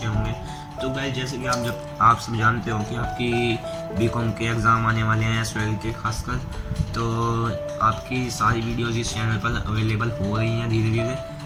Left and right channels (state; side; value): identical; both; correlation 1.00